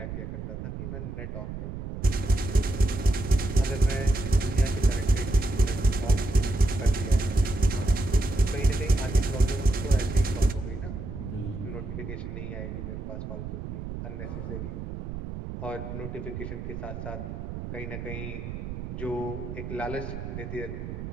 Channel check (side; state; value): right; noise; rumble, 7 dB below the sound